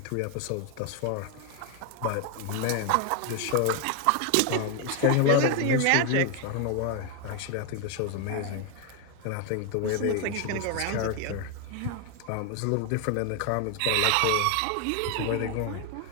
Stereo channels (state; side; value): different; both; correlation 0.01